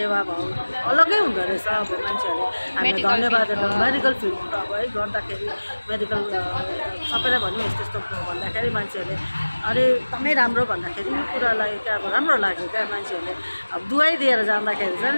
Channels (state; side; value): inverted; both; correlation -1.00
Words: भाव अलग्गै हुँदो रहेछ। अब मान्छेहरूले हामी धन्यवाद मेडिकल फिल्ड अब है गर्दाखेरि मेडिकल सबैलाई भन्यो यस्तो यस्तो भन्दाखेरि मान्छेहरूले अरे एकदमै राम्रो भन्दाखेरि यो कुरालाई क्या अब राम्रो लाग्यो क्या। मान्छेहरूले अब दुवाई दिएर जाँदाखेरि